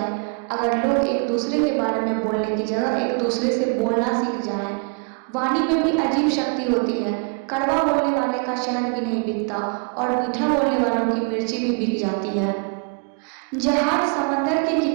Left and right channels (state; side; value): quieter; left; 35.0 dB